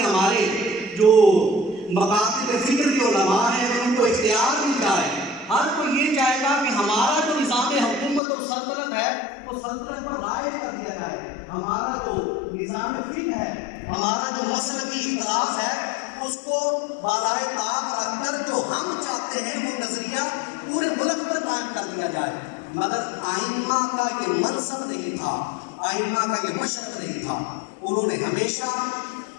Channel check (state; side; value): drops out; right; at 8.2 s